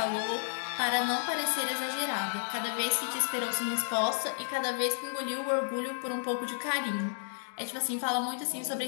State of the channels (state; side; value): silent; right; digital silence